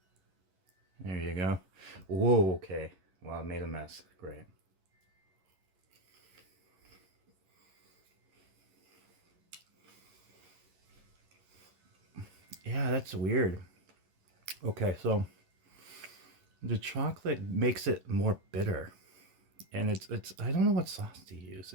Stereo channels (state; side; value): late; left; 11 ms